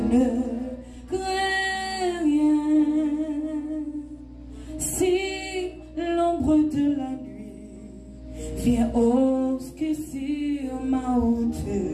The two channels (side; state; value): both; identical; correlation 1.00